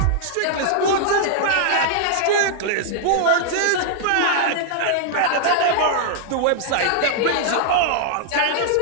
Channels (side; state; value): both; different; correlation -0.01